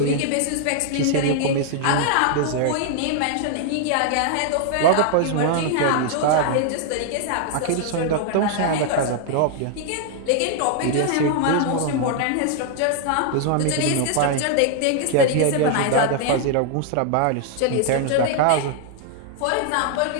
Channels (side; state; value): both; different; correlation 0.00